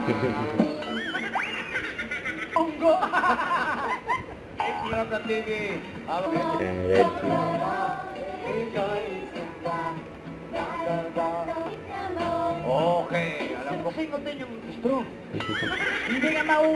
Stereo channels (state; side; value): identical; both; correlation 1.00